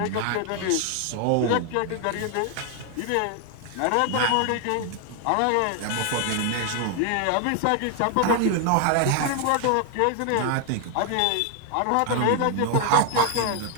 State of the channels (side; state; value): both; different; correlation 0.00